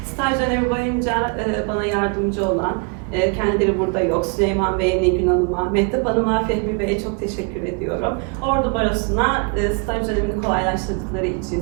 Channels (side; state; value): left; quieter; 35.0 dB